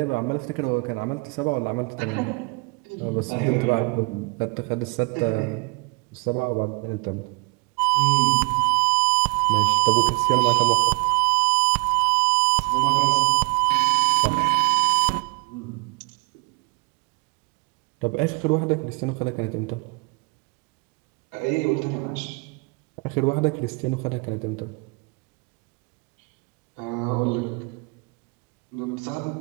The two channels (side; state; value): left; quieter; 30.1 dB